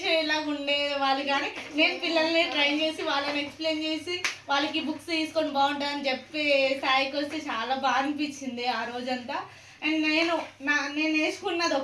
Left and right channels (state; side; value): identical; both; correlation 1.00